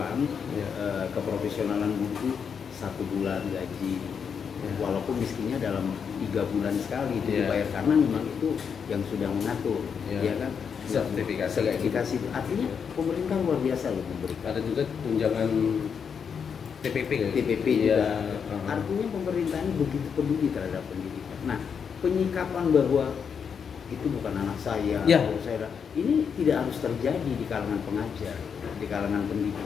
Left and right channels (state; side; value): quieter; right; 6.8 dB